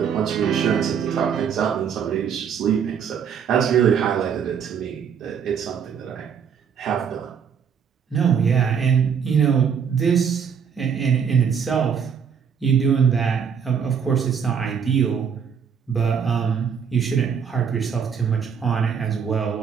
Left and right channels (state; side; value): quieter; left; 7.1 dB